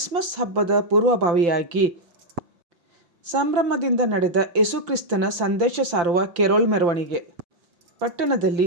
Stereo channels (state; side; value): late; left; 5.8 ms